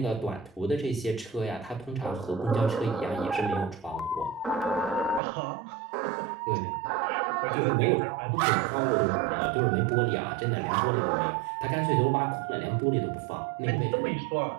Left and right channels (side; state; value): left; drops out; at 5.2 s